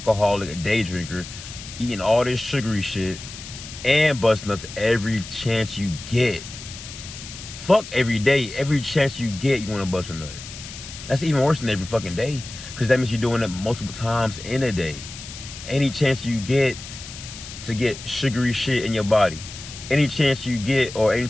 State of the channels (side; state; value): left; noise; hiss, 13 dB below the sound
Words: a day drinker, eating all this sugary shit and bust nuts every chance you get. Fuck every day, every chance you get, you want to bust a nut. That's even worse than every fucking day, because that means you're doing it multiple times in a day. Any chance you get to get sugary shit in your body, any chance you get, or